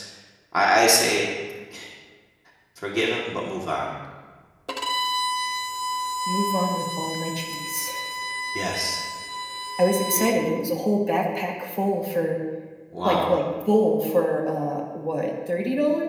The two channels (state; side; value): identical; both; correlation 1.00